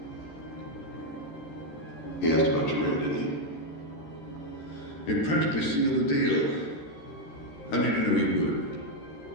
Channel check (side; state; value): right; late; 13 ms